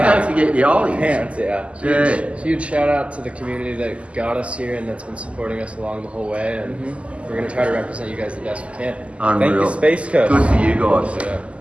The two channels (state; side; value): late; left; 0.059 ms